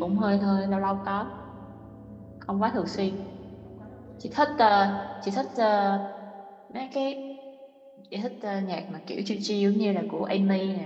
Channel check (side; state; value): both; identical; correlation 1.00